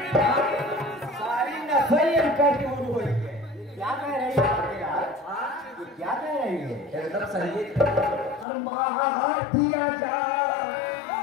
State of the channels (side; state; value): right; drops out; at 8.5 s